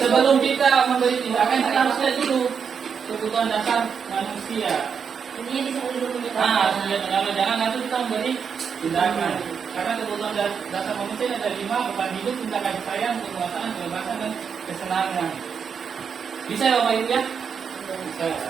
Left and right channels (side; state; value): left; quieter; 6.6 dB